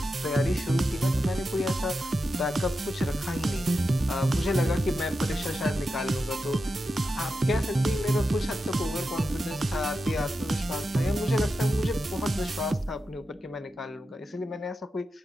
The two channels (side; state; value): both; normal; correlation 0.89